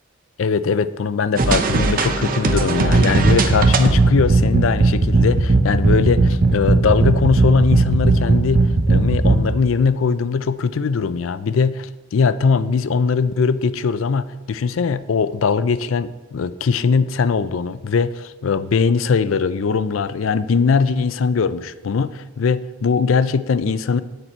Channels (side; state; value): both; normal; correlation 0.52